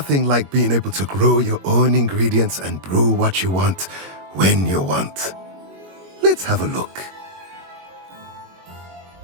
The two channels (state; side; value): late; left; 21 ms